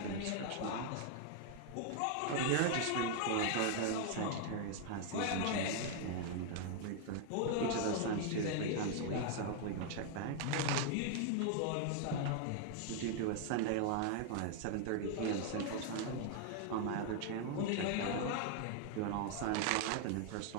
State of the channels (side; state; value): both; different; correlation 0.00